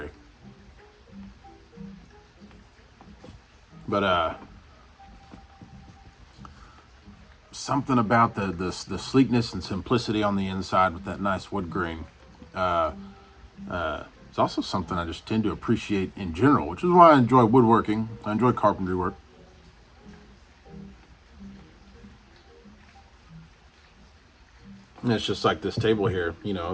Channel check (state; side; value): identical; both; correlation 1.00